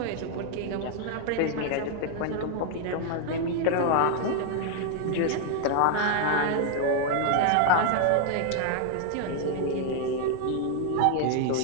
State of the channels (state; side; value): different; both; correlation 0.00